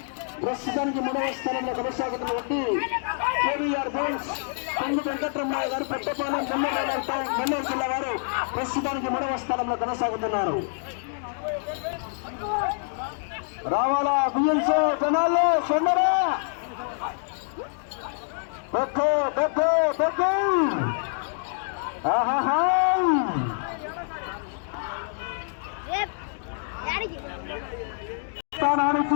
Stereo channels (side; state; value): right; silent; digital silence